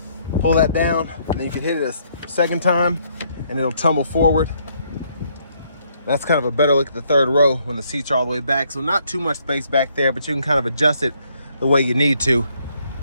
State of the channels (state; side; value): inverted; both; correlation -0.70